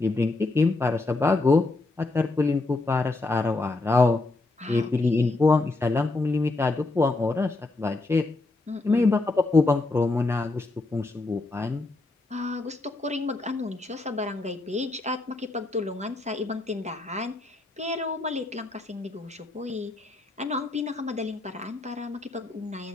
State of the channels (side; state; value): right; quieter; 3.2 dB